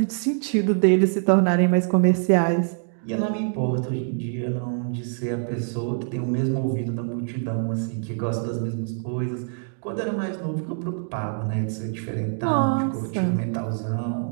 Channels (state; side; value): silent; left; digital silence